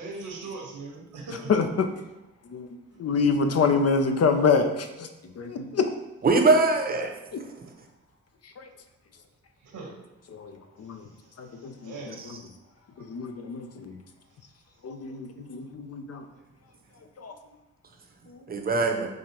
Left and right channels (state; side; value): normal; both; correlation 0.09